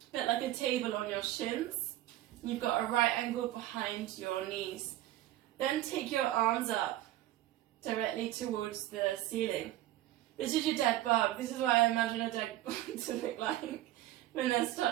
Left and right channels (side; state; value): left; quieter; 14.7 dB